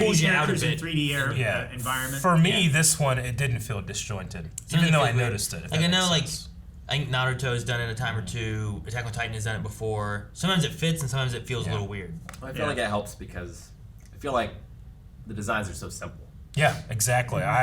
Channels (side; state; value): both; identical; correlation 1.00